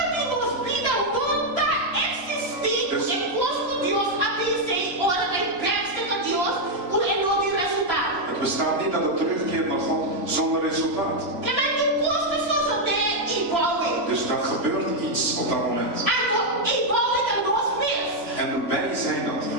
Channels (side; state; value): left; late; 3.0 ms